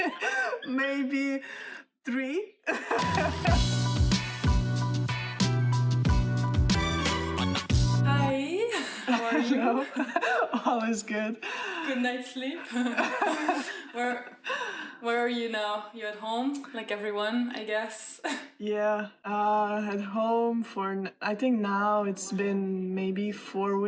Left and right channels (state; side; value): identical; both; correlation 1.00